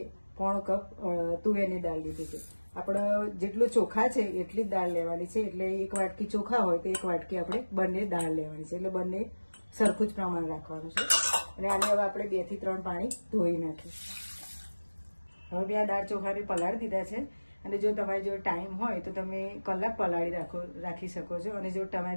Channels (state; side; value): inverted; both; correlation -1.00